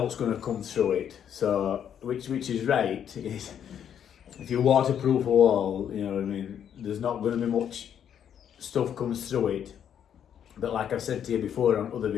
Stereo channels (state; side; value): quieter; right; 9.0 dB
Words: going to come through it. So which is right. If you waterproof a wall, you know what I mean, there's not going to be much stuff comes through it. But like I've said to you before on other